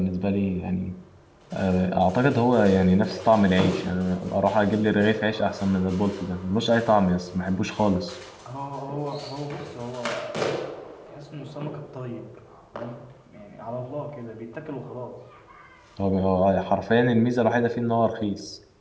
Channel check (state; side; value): identical; both; correlation 1.00